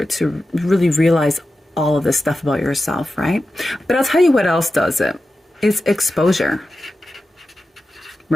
to really realize all of this stuff about yourself, right? But I'll tell you what else does it. It's exposure,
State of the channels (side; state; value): both; normal; correlation 0.92